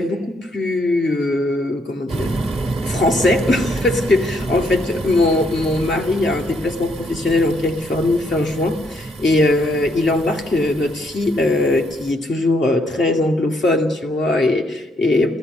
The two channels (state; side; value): normal; both; correlation 0.72